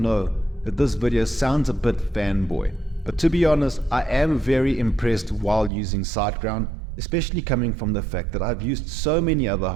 that this video sounds a bit fanboy, but to be honest, I am very impressed while using SiteGround, especially coming from the fact that I've used so many other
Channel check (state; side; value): drops out; left; at 5.7 s